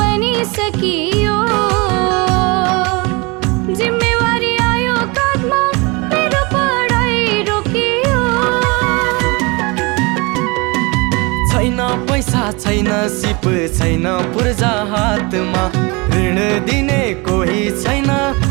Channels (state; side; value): quieter; left; 27.1 dB